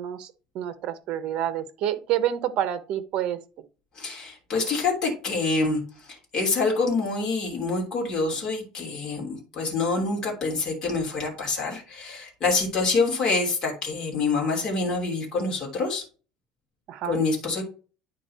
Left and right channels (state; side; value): normal; both; correlation 0.35